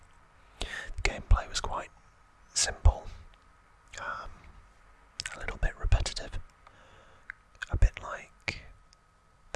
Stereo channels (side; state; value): both; identical; correlation 1.00